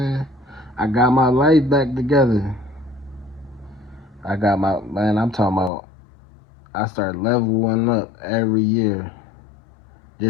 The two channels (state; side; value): drops out; right; at 5.7 s